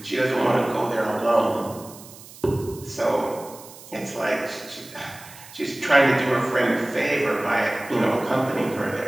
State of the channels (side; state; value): right; noise; hiss, 19 dB below the sound